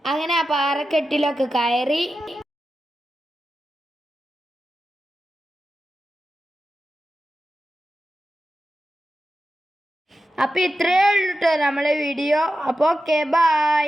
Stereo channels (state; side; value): normal; both; correlation 0.91